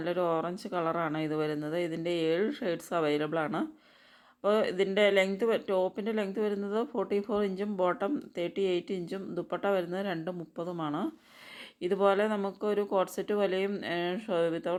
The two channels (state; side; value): identical; both; correlation 1.00